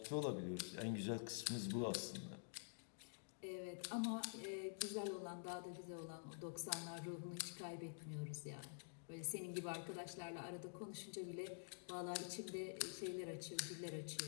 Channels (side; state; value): right; silent; digital silence